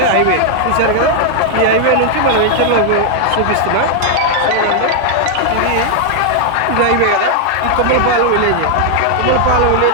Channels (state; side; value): different; both; correlation 0.00